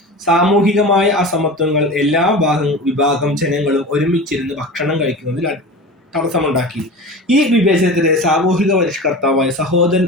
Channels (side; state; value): both; normal; correlation 0.32